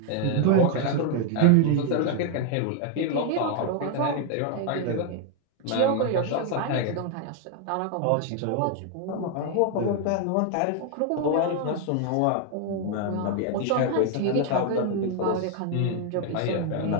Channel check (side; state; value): both; different; correlation 0.01